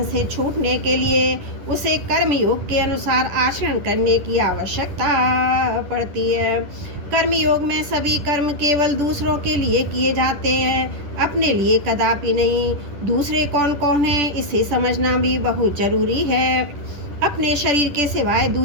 से छूटने के लिए उसे कर्मयोग के अनुसार आचरण करने की आवश्यकता पड़ती है। कर्मयोग में सभी कर्म केवल दूसरों के लिए किए जाते हैं, अपने लिए कदापि नहीं। दूसरे कौन कौन है इसे समझना भी बहुत जरूरी है। अपने शरीर के सिवाय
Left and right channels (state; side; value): late; left; 10 ms